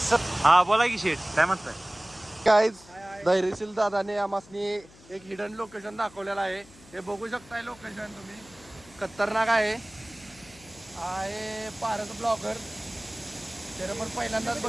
हा बोला की शेठ काय म्हणताय. काय धैर्यशील दादाने आम्हासनी एक हिडन लोकेशन दाखवलेलं आहे. हे बघू शकताय लोकेशन तुम्ही. खतरनाक आहे पारस ब्लॉगर. त्याला पण पहिल्यांदाच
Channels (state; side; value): noise; left; hum, 24 dB below the sound